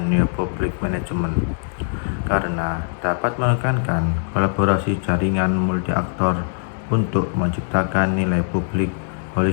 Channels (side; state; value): right; silent; digital silence